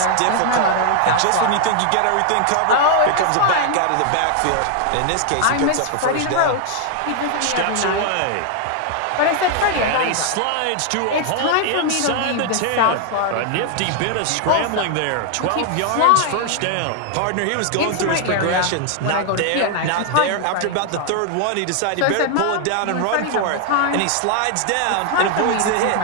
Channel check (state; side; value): different; both; correlation 0.00